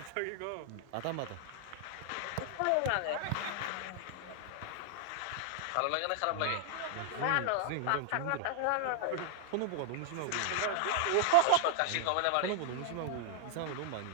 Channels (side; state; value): both; different; correlation 0.00